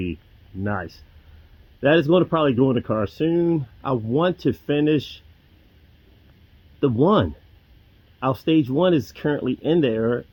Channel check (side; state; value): both; identical; correlation 1.00